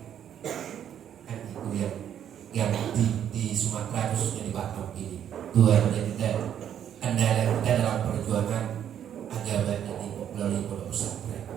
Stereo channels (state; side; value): quieter; left; 9.7 dB